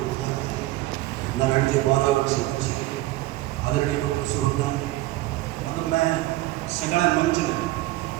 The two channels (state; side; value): quieter; left; 17.8 dB